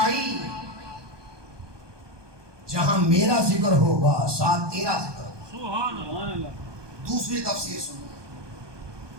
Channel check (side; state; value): left; late; 1.2 ms